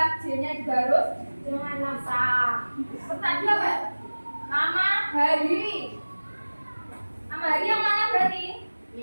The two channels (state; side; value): inverted; both; correlation -1.00